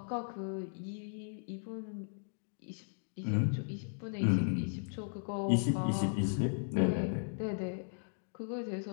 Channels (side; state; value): right; silent; digital silence